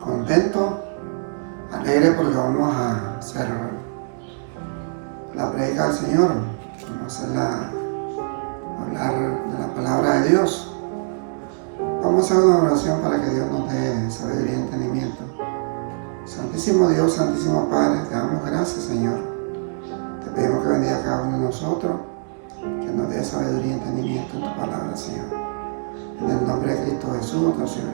contento, alegre porque vamos a hacer la predica del Señor. Vamos a hablar de la palabra de Dios. Vamos a hacer una oración para que Dios nos dé sabiduría y entendimiento. Santísimo Dios, Santísimo Padre, te damos gracias, Señor. Te pedimos que bendiga a cada uno de nosotros, que nos dé sabiduría y entendimiento en tu palabra, Señor. En el nombre de Cristo Jesús, nuestro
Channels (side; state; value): left; silent; digital silence